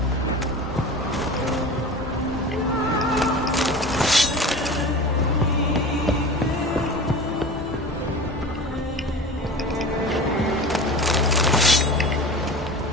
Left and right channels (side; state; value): both; normal; correlation 0.34